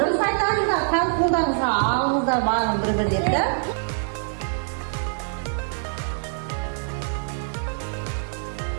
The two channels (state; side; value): silent; left; 62 dB below the other